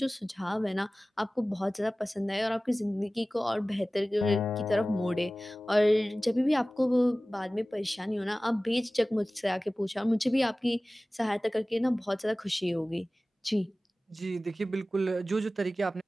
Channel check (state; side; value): normal; both; correlation 0.97